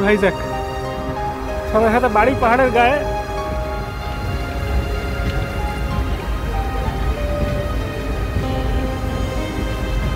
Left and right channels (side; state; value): both; identical; correlation 1.00